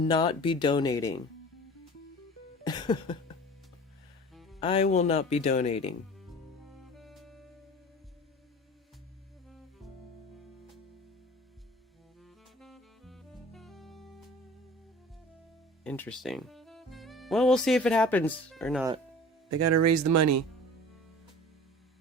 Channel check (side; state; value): both; normal; correlation 0.41